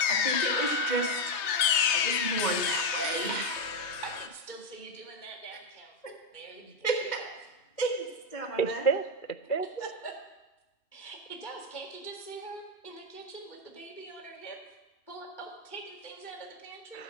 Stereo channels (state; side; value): late; right; 3.2 ms